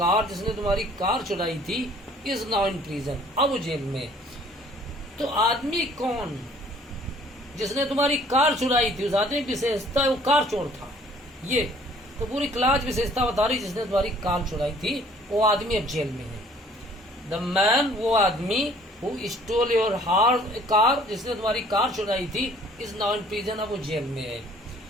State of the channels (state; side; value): normal; both; correlation 0.56